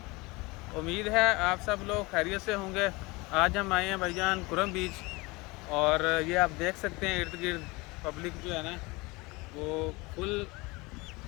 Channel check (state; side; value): quieter; right; 24.2 dB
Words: उम्मीद है आप सब लोग खैरियत से होंगे। आज हम आए हैं भाईजान कुरम बीच, और ये आप देख सकते हैं इर्द गिर्द पब्लिक जो है ना वो फुल